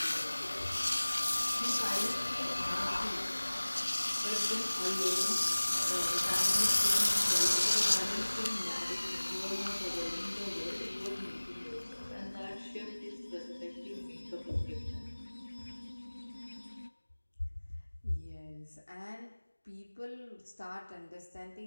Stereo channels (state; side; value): inverted; both; correlation -1.00